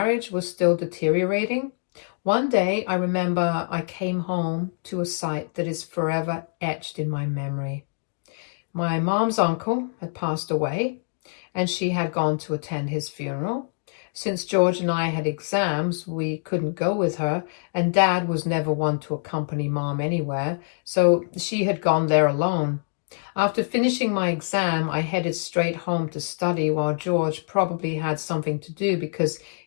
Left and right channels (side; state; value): right; silent; digital silence